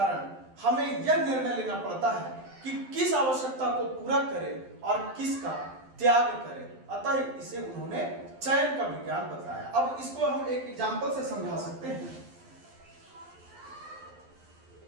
हमें यह निर्णय लेना पड़ता है कि किस आवश्यकता को पूरा करें और किसका त्याग करें। अतः इसे उन्होंने चयन का विज्ञान बताया। अब इसको हम एक एग्जाम्पल से समझा सकते हैं।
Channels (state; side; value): late; left; 12 ms